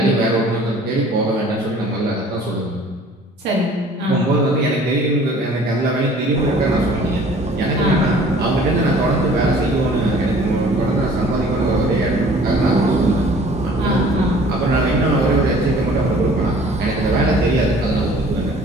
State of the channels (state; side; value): normal; both; correlation 0.51